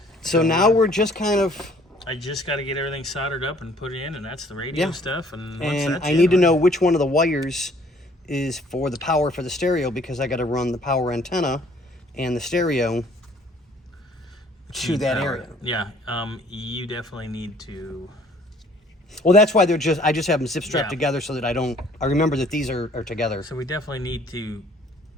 So now we're just kind of, I just got to get everything soldered up and put it in, and that's the radio Yeah. stuff. And, once and that's I in, need to know which one of the wires is for the power for the stereo, because I got to run the power antenna and the stereo to that area. Yeah, you definitely need to. Well, that's why I just have them zip strapped Yeah. together so that I remember that these are together. So we definitely need to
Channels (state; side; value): normal; both; correlation 0.58